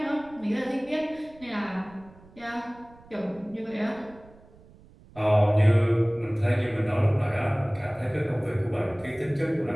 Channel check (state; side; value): noise; right; rumble, 24 dB below the sound